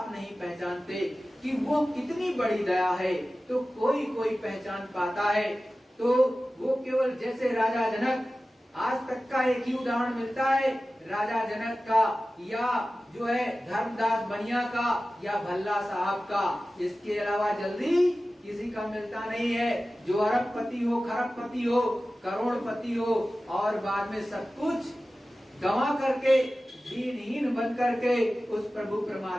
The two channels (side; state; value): both; normal; correlation 0.95